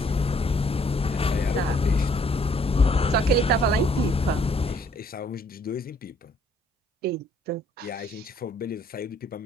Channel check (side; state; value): both; normal; correlation 0.64